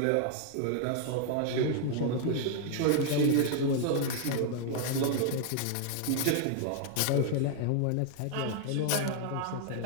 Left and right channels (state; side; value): different; both; correlation 0.00